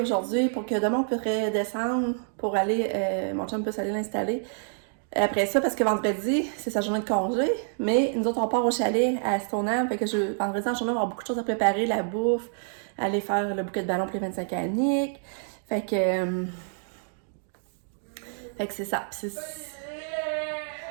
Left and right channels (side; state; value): left; silent; digital silence